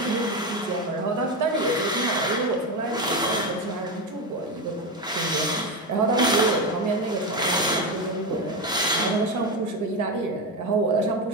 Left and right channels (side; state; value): both; normal; correlation 0.14